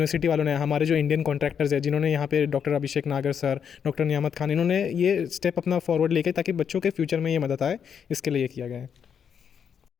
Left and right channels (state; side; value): quieter; right; 7.6 dB